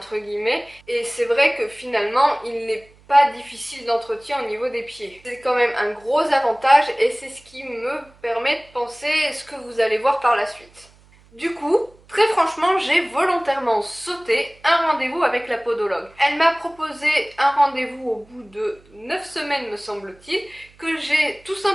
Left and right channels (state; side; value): noise; right; hum, 28 dB below the sound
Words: guillemets, et c'est vrai que finalement il n'est pas difficile d'entretien au niveau des pieds. C'est quand même un gros avantage et c'est ce qui me permet de penser ce que vous allez voir par la suite. Du coup, très franchement, j'ai volontairement sauté un rendez-vous avec la podologue. Elle m'a proposé un rendez-vous au bout de 9 semaines me semble-t-il, que j'ai tout